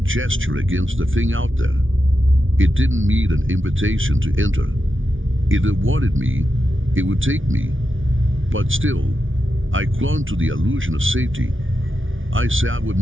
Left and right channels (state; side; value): late; left; 0.57 ms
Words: against the thing out there. It didn't need an invitation to enter. If it wanted me, it would take me. But still, I clung to the illusion of safety. I sat with